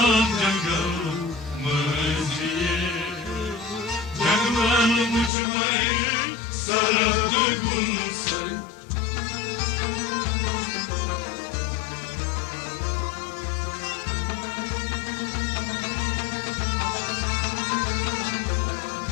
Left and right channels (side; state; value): right; drops out; at 5.3 s